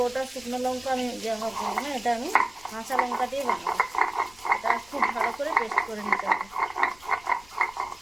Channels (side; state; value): left; noise; rumble, 24 dB below the sound